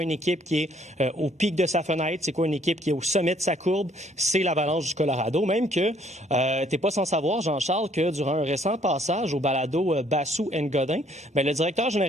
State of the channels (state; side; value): normal; both; correlation 0.64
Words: une équipe qui est au pic de sa fenêtre? C'est quoi une équipe qui est au sommet de sa courbe? C'est l'Avalanche du Colorado. Même que t'es pas sans savoir, Jean-Charles, que durant un récent passage au balado Bassou and Godin, le directeur